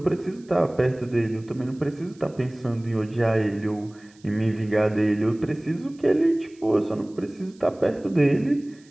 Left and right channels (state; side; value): noise; right; hiss, 30 dB below the sound